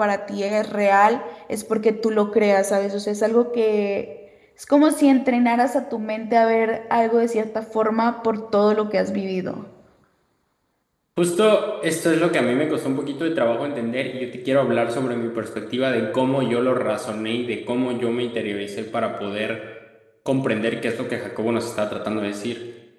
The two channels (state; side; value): identical; both; correlation 1.00